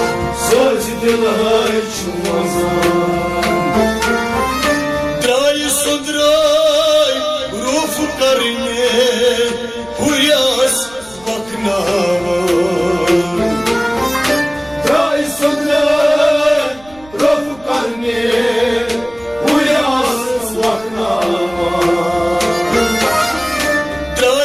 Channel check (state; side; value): noise; right; rumble, 25 dB below the sound